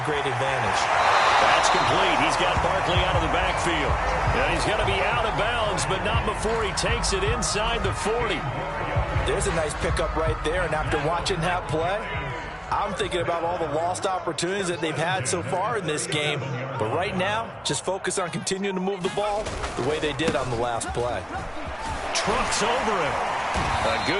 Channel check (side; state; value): both; identical; correlation 1.00